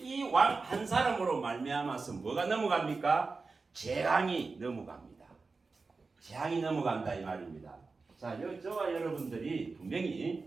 이 왕 한 사람으로 말미암아서 뭐가 넘어갑니까? 재앙이 넘어갑니다. 재앙이 넘어간다 이 말입니다. 자, 저와 여러분들이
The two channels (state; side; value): quieter; left; 4.1 dB